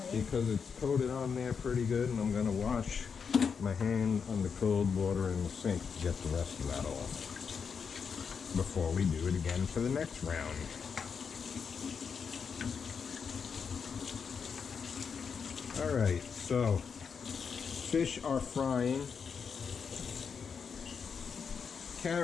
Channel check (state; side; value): quieter; right; 6.2 dB